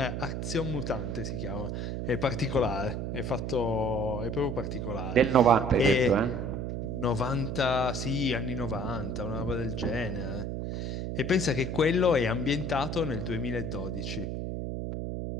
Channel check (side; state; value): right; noise; hum, 3 dB below the sound